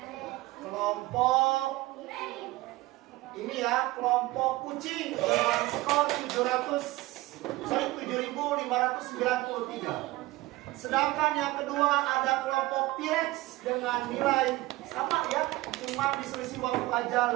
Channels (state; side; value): quieter; left; 19.2 dB